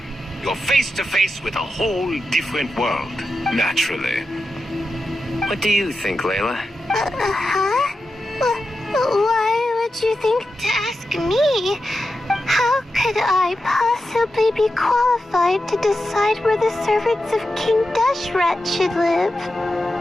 You're face-to-face with a whole different world. Naturally. What do you think, Layla? Huh? Why would you think to ask me? How could I possibly be qualified to decide where the servants of King Deshret should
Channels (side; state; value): both; normal; correlation 0.90